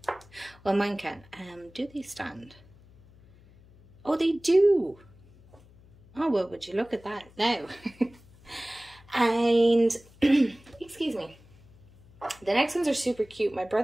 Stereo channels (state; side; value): noise; left; hum, 26 dB below the sound